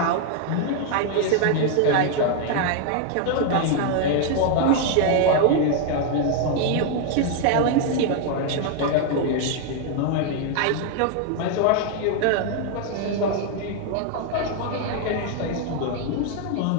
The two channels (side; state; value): both; different; correlation 0.00